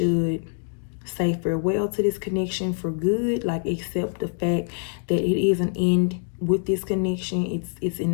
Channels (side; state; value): right; silent; 61 dB below the other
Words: say farewell to this connection for good, like accept the fact that it is an end with this connection. It's